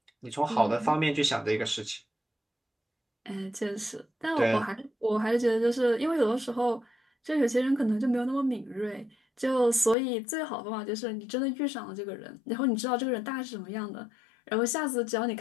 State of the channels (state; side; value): drops out; right; at 10.0 s